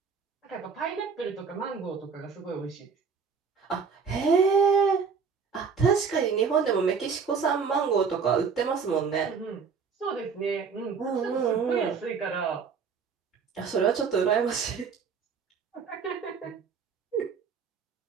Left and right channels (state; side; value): quieter; left; 5.8 dB